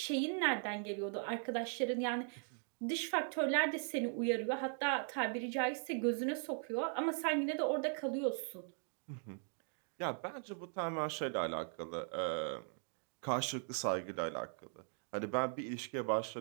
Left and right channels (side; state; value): left; silent; 52 dB below the other